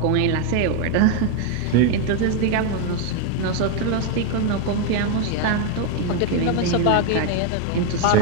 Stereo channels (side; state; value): both; different; correlation 0.01